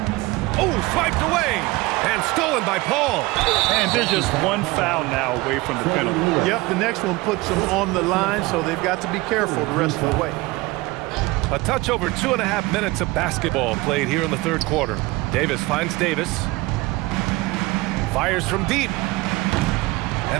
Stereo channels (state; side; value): quieter; left; 21.6 dB